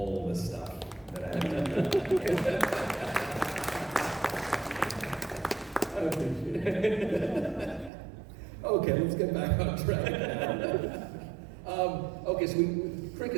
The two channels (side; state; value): left; drops out; at 7.9 s